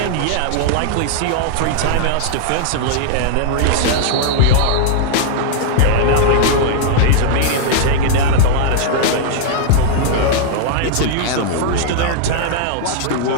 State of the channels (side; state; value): both; different; correlation -0.01